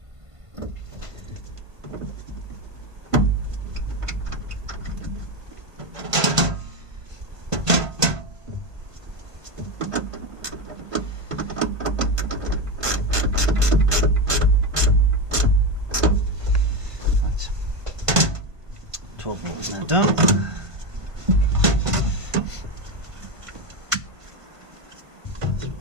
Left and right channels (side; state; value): left; late; 1.5 ms